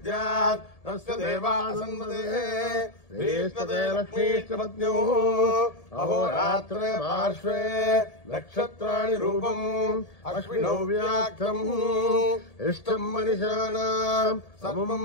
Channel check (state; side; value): late; right; 1.7 ms